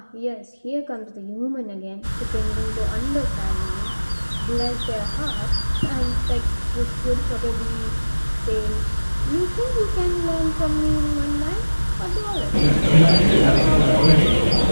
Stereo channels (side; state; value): both; inverted; correlation -1.00